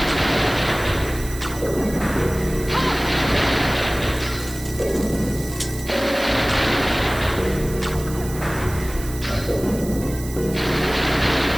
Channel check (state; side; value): noise; right; hiss, 14 dB below the sound